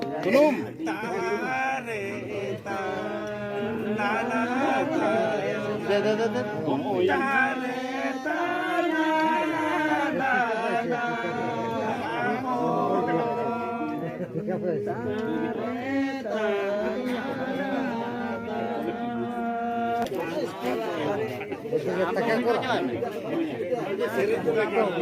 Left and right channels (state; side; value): identical; both; correlation 1.00